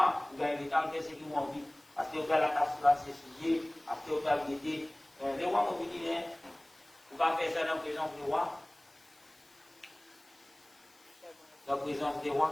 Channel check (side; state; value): left; noise; hiss, 30 dB below the sound